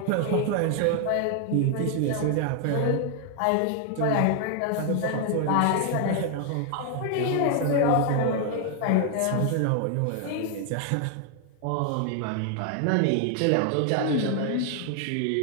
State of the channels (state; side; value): different; both; correlation 0.00